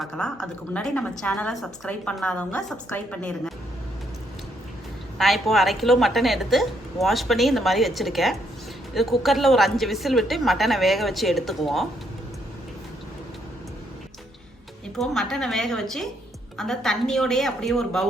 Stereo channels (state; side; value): normal; both; correlation 0.73